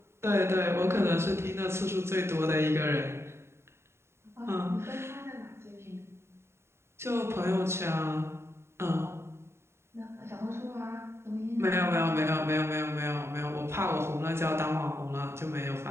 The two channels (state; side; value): late; left; 0.12 ms